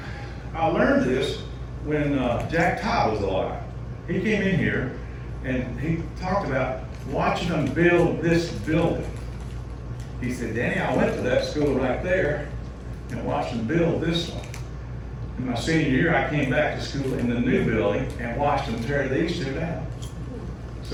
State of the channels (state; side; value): identical; both; correlation 1.00